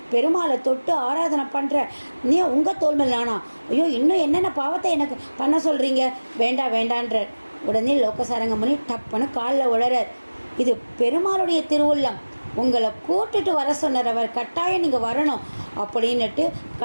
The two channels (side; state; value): both; inverted; correlation -1.00